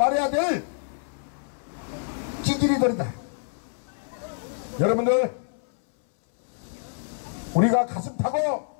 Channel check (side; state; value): right; silent; 60 dB below the other